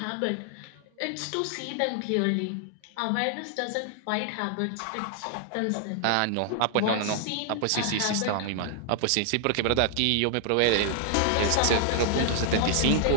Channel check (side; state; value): both; different; correlation 0.00